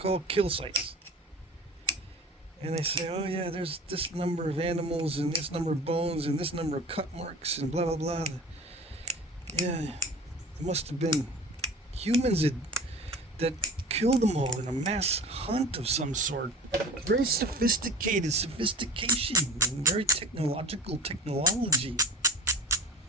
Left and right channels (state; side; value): normal; both; correlation 0.38